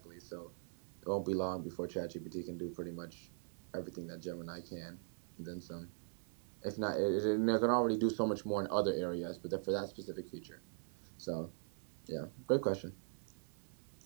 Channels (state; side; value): silent; left; 50 dB below the other